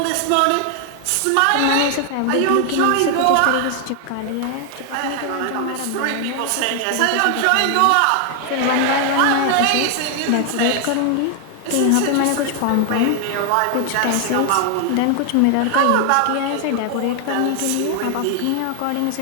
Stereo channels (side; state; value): both; different; correlation 0.00